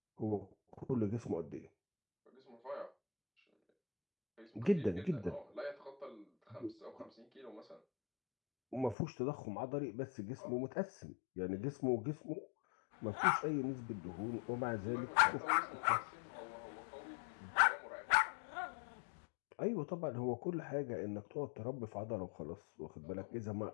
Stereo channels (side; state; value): right; drops out; at 9.0 s